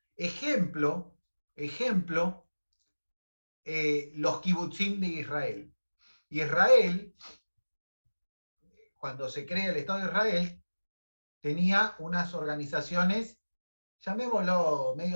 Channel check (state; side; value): inverted; both; correlation -1.00